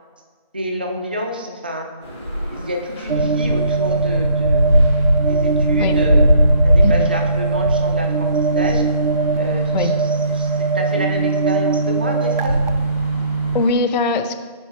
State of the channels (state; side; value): inverted; both; correlation -0.61